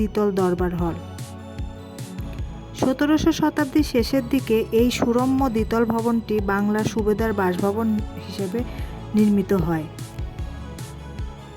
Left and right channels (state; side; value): identical; both; correlation 1.00